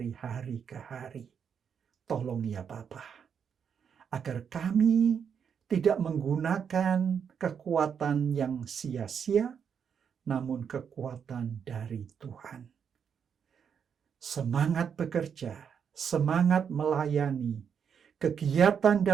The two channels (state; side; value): quieter; left; 7.3 dB